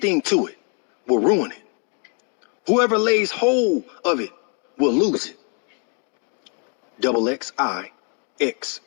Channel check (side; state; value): right; quieter; 37.2 dB